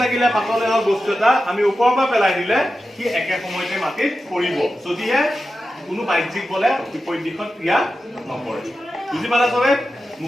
লাগিলে পাতলে হওক বস্তু এটা আমি ওপৰৰ পৰা পেলাই দিলে সি একে সময়তে মাটিত পৰিব যদিহে কোনো বাহ্যিক বলে বিপৰীত দিশত ক্ৰিয়া নকৰে বুজি পালা চবে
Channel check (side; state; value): both; normal; correlation 0.92